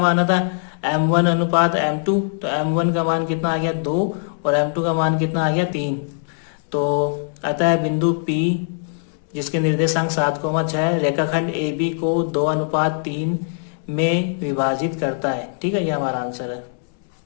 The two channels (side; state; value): right; silent; 65 dB below the other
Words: माना था? M1:M2। तो M1 का मान कितना आ गया? 2 और M2 का मान कितना आ गया? 3। तो आता है बिंदु P जिसके निर्देशांक 7,6 रेखाखंड AB को 2:3 में विभाजित करता है। ठीक है, ये हमारा आंसर है।